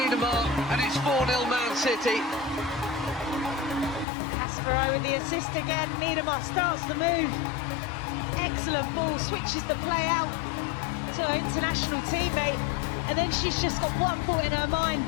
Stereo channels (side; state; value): right; drops out; at 4.0 s